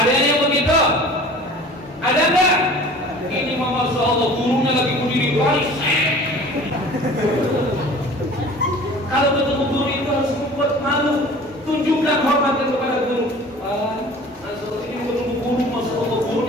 yang begitu? Ada nggak? Ini Masya Allah, gurunya lagi berdiri baris. Kalau ketemu guru itu harus membuat malu. Tunjukkan hormat kepada guru. Masya Allah, ini ketemu guru, Masya Allah, guru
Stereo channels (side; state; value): both; normal; correlation 0.44